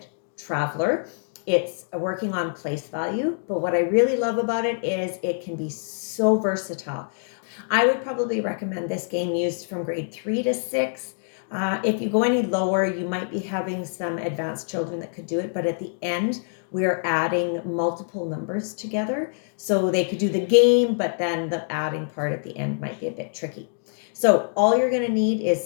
Traveler. It's working on place value, but what I really love about it is it can be so versatile. I would probably recommend this game used from grade 3 to 6. If you go any lower, you might be having some advanced children that could do it, but at the end, we are adding multiple numbers together. So they could do the game, but then the adding part at the end might be a bit tricky. So all you're gonna need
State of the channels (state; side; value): silent; right; digital silence